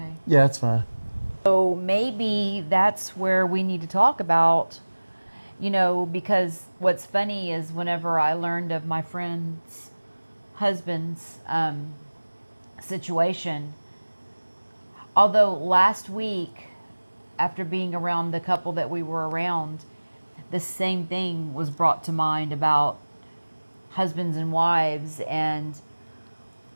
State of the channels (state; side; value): inverted; both; correlation -1.00